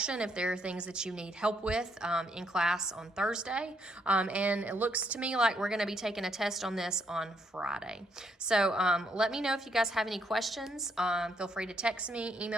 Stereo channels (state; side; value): normal; both; correlation 0.73